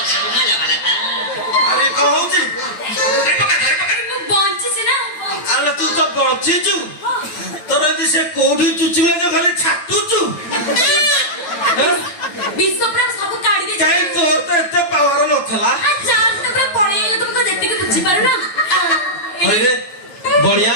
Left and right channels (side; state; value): right; late; 9.1 ms